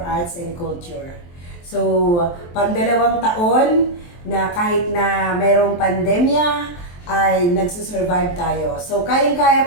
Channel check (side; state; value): right; late; 23 ms